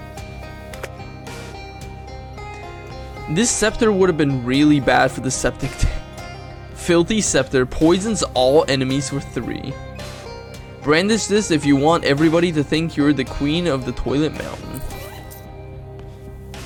This scepter would have been really bad for the septic tank. Filthy scepter poisons all enemies for 3. Brandish this if you want everybody to think you're the queen of the toilet mountain.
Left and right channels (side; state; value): both; identical; correlation 1.00